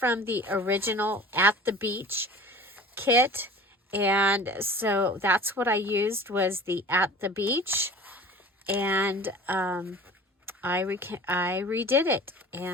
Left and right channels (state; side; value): normal; both; correlation 0.41